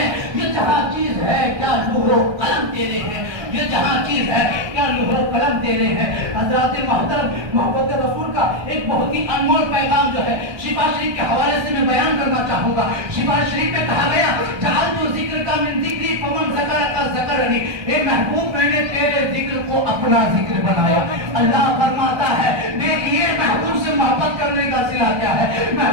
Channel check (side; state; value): left; late; 1.2 ms